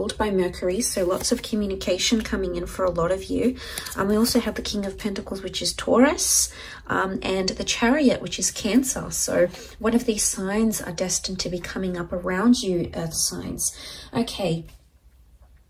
by Mercury, so lots of communication coming in for a lot of you. We also have the King of Pentacles, which is Taurus, and the Chariot, which is Cancer. So one of these signs are destined to be coming up around you, Earth signs. Okay,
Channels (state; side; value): identical; both; correlation 1.00